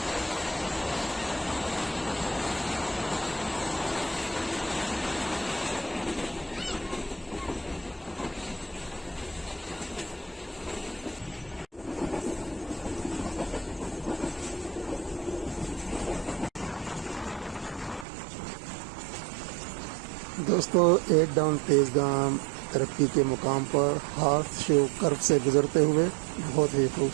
दोस्तों, 8 डाउन तेजगाम तरक्की के मुकाम पर हार्थ शो कर्व से गुजरते हुए बहुत ही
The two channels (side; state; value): left; drops out; at 18.1 s